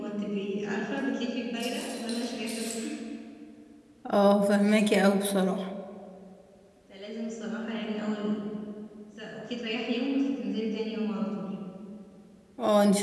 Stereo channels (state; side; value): identical; both; correlation 1.00